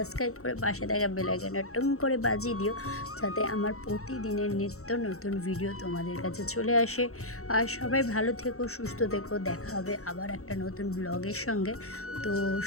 করে পাশে থাকা বেল আইকনটা টুং করে বাজিয়ে দিও, যাতে আমার প্রতিদিনের নিত্য নতুন ভিডিও তোমাদের কাছে চলে আসে। আর সবাই ভালো থেকো, সুস্থ থেকো, দেখা হবে আবার একটা নতুন ব্লগের সঙ্গে। তো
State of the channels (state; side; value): late; right; 0.64 ms